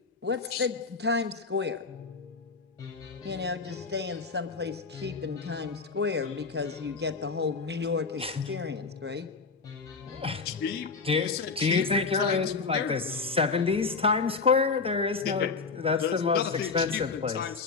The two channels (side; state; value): right; quieter; 4.6 dB